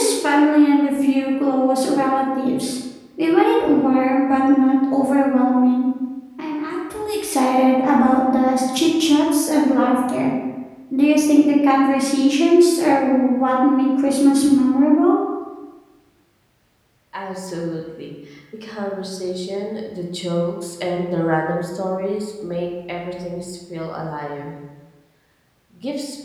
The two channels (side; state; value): both; identical; correlation 1.00